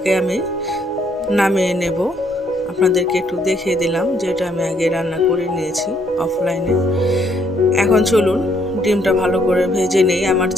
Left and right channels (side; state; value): both; normal; correlation 0.69